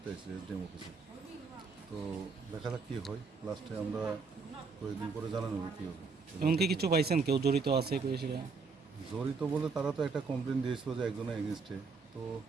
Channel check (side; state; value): left; quieter; 4.8 dB